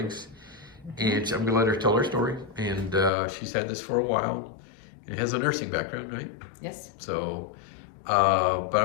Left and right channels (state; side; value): drops out; right; at 3.1 s